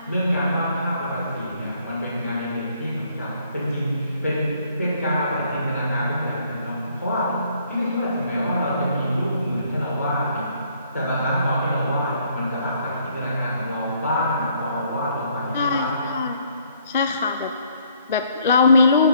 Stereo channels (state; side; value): inverted; both; correlation -0.66